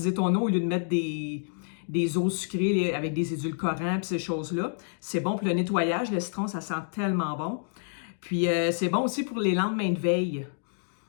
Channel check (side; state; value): right; silent; digital silence